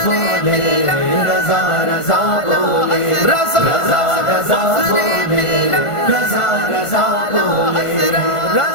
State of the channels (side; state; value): right; late; 1.5 ms